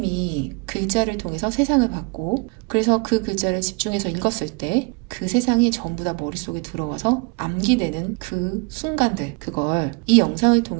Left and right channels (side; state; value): left; quieter; 31.2 dB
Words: 글자를 통해서 세상을 봤고 그래서 그 글자를 집중해서 읽었을 때 그 세상이 전부 다 머릿속에 들어와서 암기되는 그 순간들, 그걸 이 영상을